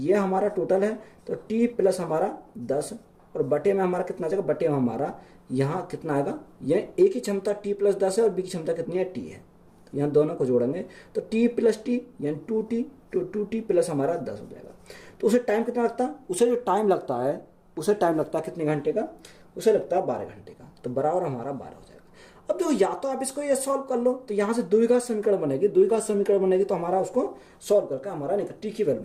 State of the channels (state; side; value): identical; both; correlation 1.00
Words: हमारा टोटल है। तो टी प्लस हमारा 10 और बटे में हमारा कितना जाएगा? बटे में हमारा यहाँ कितना आएगा? ये ए की क्षमता टी प्लस 10 है और बी की क्षमता कितनी है? टी है। यहाँ दोनों को जोड़ेंगे तो टी प्लस टी यानी 2t, तो 2t प्लस हमारा 10 हो जाएगा। तो उसे टाइम कितना लगता है, उसे जो टाइम लगता है कितने घंटे का, उसे लगता है 12 घंटे का, तो बराबर हमारा 12 हो जाएगा। अब देखो या तो आप इसको ये सॉल्व कर लो, तो यहाँ से द्विघात समीकरण बनेगी, तो हमारा उसको सॉल्व करके हमारा टी की वैल्यू